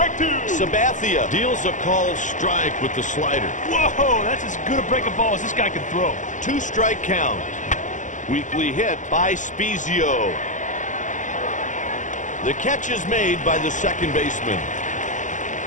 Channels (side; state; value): right; late; 0.37 ms